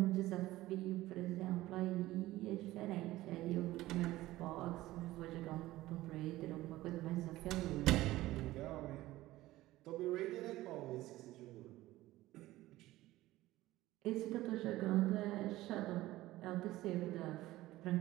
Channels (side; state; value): left; quieter; 16.9 dB